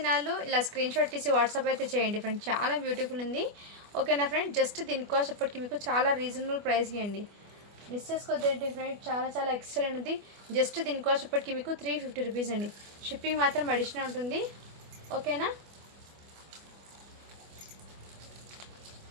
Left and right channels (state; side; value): late; left; 24 ms